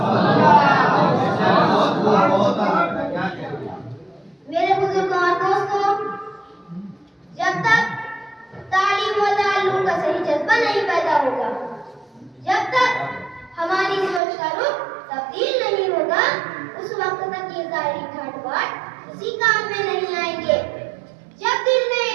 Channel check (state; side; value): drops out; left; at 14.2 s